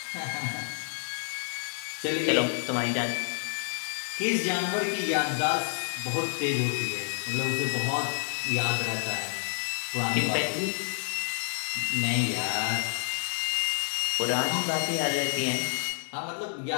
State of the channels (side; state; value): right; silent; digital silence